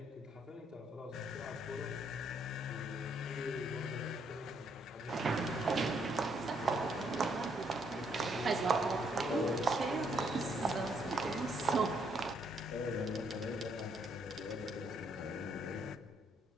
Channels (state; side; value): normal; both; correlation 0.71